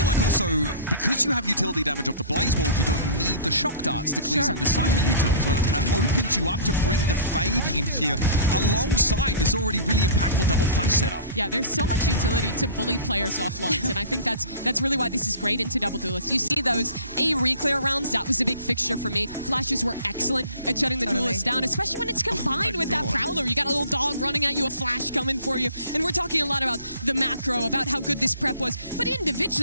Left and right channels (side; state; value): both; inverted; correlation -0.45